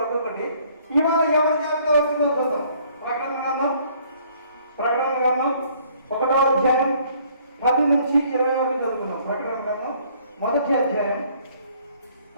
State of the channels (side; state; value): both; inverted; correlation -0.61